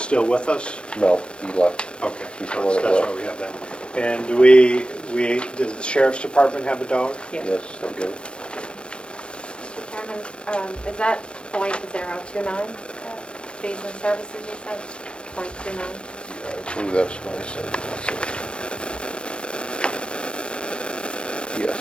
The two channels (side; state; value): right; late; 0.057 ms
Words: with us? No, he left. Okay, He's so the one that that's left. why we have that. And does the sheriff's department have a dog? Yes. Yes, they do. Mr. Chairman, is that .029, fees and services you said? .29? I believe that's what I said. That's it. Yes.